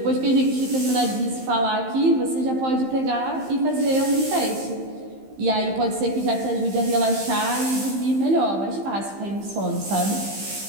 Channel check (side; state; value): left; late; 15 ms